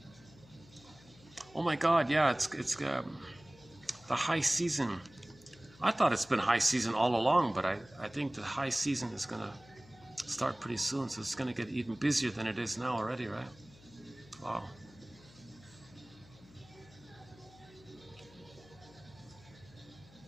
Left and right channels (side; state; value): left; noise; hum, 23 dB below the sound